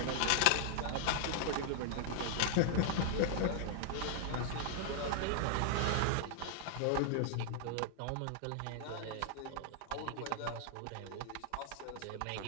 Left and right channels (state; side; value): different; both; correlation -0.01